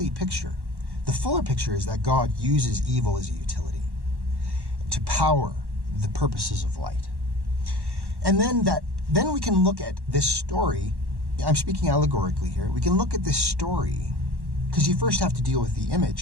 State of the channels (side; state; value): left; late; 1.1 ms